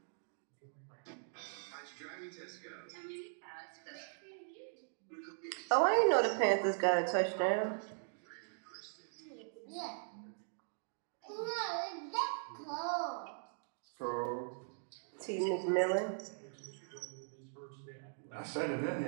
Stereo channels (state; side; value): silent; left; digital silence